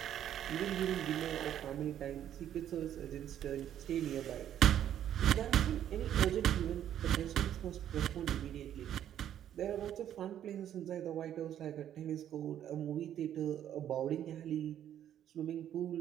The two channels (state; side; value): quieter; left; 10.6 dB